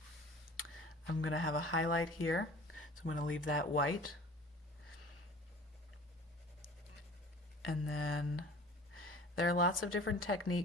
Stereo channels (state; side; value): normal; both; correlation 0.44